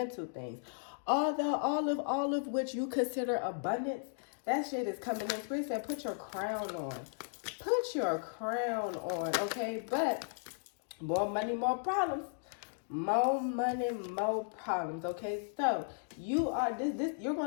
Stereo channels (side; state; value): right; silent; digital silence